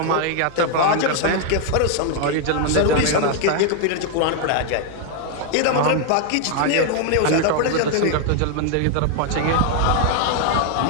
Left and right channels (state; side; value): different; both; correlation 0.00